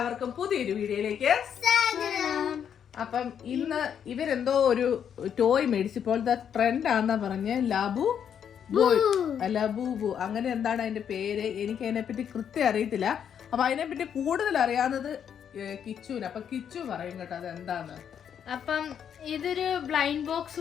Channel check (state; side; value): quieter; right; 8.4 dB